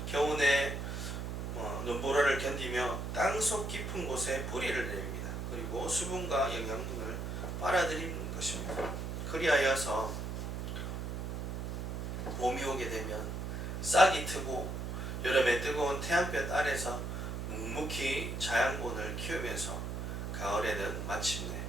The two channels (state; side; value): noise; right; hum, 4 dB below the sound